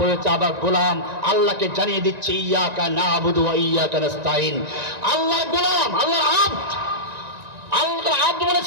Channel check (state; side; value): late; left; 1.9 ms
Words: আবার গোলাম আল্লাহকে জানিয়ে দিচ্ছে ইয়াকা নাবুদু ওয়া ইয়াকা নাস্তাইন। আল্লাহর গোলাম, আল্লাহর আব্দ। আল্লাহর আব্দ